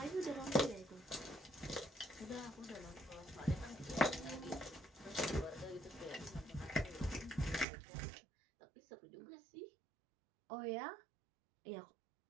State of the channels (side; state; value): left; drops out; at 7.7 s